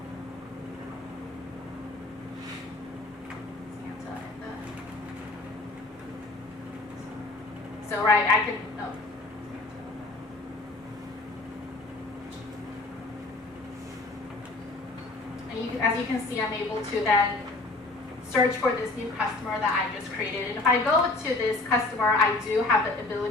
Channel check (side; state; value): right; quieter; 3.1 dB